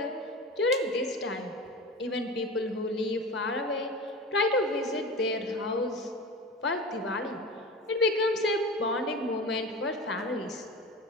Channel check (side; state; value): both; normal; correlation 0.31